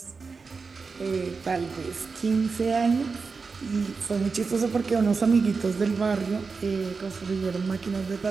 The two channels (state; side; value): quieter; left; 4.7 dB